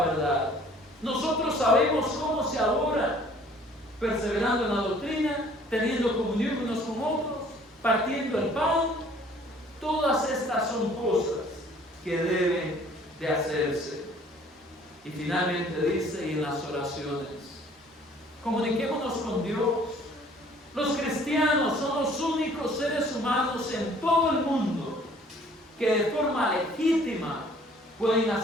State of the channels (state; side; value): normal; both; correlation 0.55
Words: verdad. Nosotros sabemos cómo se adora, perseverando en la doctrina, teniendo comunión unos con otros, partiendo el pan. Todas estas son cosas que deben de hacerse. Y finalmente dice, y en las oraciones, comuniquémonos con Dios. Los cristianos son los únicos seres humanos en todo el mundo que de forma legítima pueden